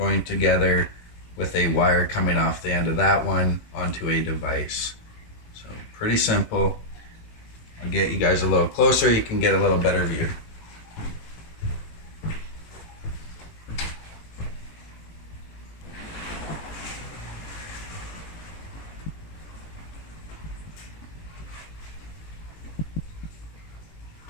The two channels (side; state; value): right; late; 18 ms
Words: together with a wire coming off the end of that one onto a device. So pretty simple. I'll get you guys a little closer, you can get a little better view.